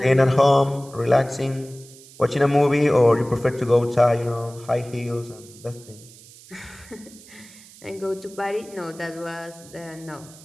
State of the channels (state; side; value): noise; right; hiss, 21 dB below the sound